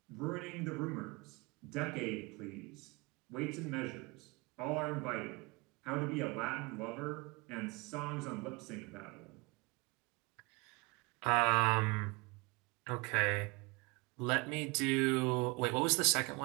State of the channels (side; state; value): left; quieter; 27.0 dB